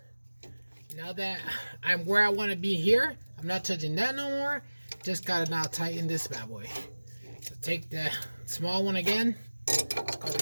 Now that I'm where I want to be here, I'm not touching that no more. Just gotta now tighten this bad boy. So take the small one again. Let's go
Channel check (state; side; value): inverted; both; correlation -1.00